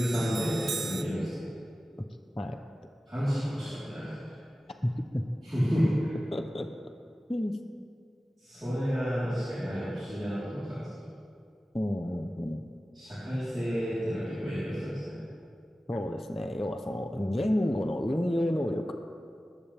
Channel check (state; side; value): normal; both; correlation 0.95